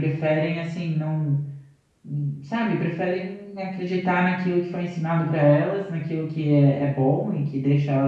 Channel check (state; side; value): identical; both; correlation 1.00